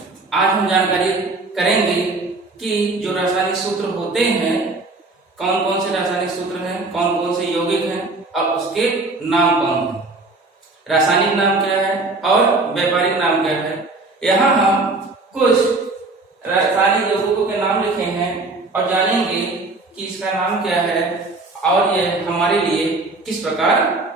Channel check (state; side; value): quieter; left; 3.3 dB